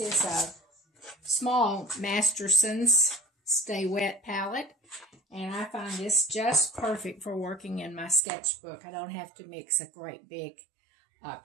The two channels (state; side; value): drops out; left; at 8.2 s